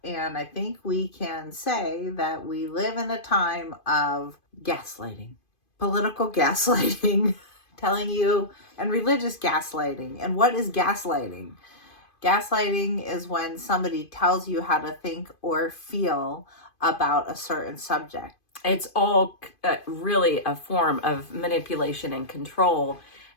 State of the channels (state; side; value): late; right; 2.5 ms